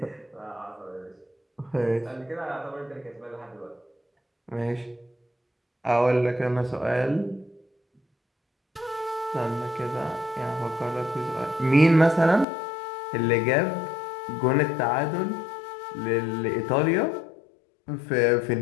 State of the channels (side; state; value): right; drops out; at 12.5 s